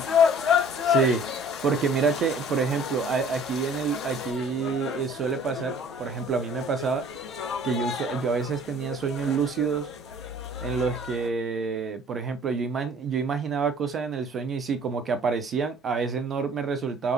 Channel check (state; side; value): normal; both; correlation 0.51